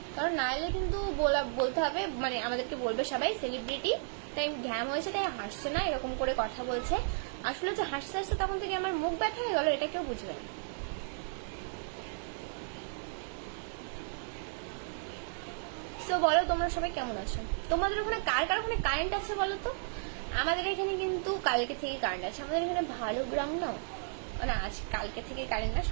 কারণ না এলে কিন্তু বলতে হবে, মানে আমাদেরকে বলবে সবাই সেলিব্রিটি তাই ঘ্যাম হয়েছে তাই হাসছে না, এরকম করে কথা বলছে। আসলে যে হাসতে হাসতে তখন থেকে আমার মুখ ব্যথা হয়ে গেল, এটা কেউ বুঝবে না। তো বলো তোমরা সবাই কেমন আছো? তোমাদের ওখানে কার কার ওখানে কারেন্ট আছে বলো তো? আমাদের এখানে কিন্তু কালকে থেকে কারেন্ট আছে। আমাদের এখানে ভালো গ্রাম না, না আজ কালকে থেকে কারেন্ট না,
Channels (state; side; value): silent; left; digital silence